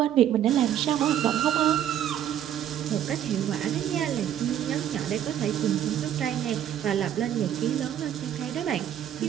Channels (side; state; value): left; quieter; 10.6 dB